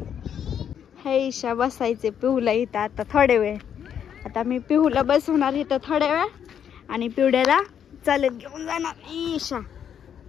हे ईशा बसायचे पिहूला इथं आता थोडे वेळ. आता मी पिहूला बसवणार इथं थोड्या वेळ आणि पिवड्याला चालत घेऊन जाणार. ईशा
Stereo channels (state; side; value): quieter; right; 8.7 dB